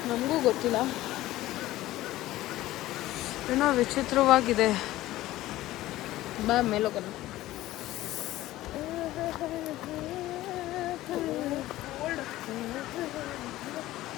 ನಮಗೂ ಗೊತ್ತಿಲ್ಲ, ಏನೋ ವಿಚಿತ್ರವಾಗಿದೆ. ಬಾ ಮೇಲೋಗೋಣ.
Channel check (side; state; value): right; quieter; 16.0 dB